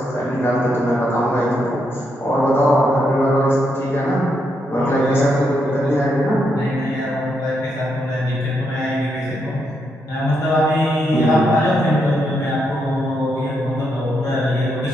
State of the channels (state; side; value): normal; both; correlation 0.80